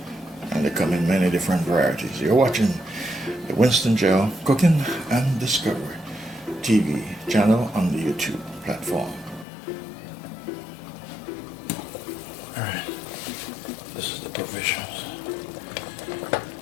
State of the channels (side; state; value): right; drops out; at 9.5 s